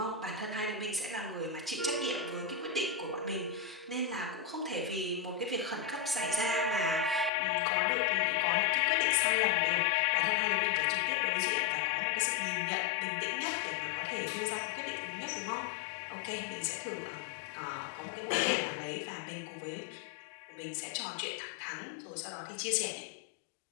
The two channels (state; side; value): drops out; right; at 7.3 s